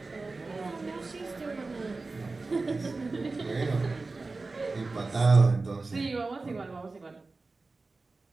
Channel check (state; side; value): quieter; left; 3.6 dB